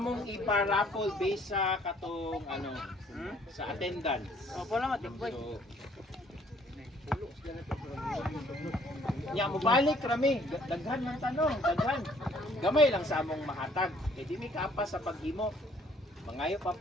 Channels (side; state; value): both; normal; correlation 0.61